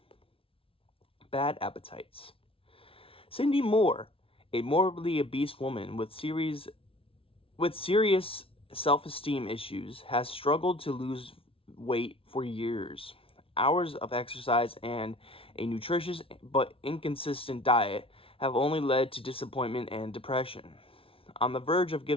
Bad Appetites. Cindy Moore, a morbidly obese woman with serious self-esteem issues, has struggled to lose weight for years. Hours of exercise and a nutritious but inconsistent diet have only led to disappointment and depression. On the verge of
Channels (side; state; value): right; late; 0.26 ms